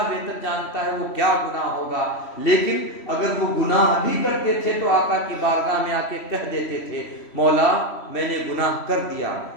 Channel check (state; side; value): late; right; 3.1 ms